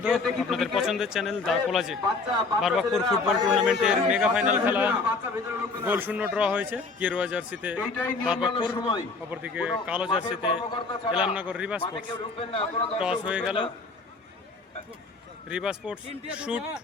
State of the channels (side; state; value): right; quieter; 4.0 dB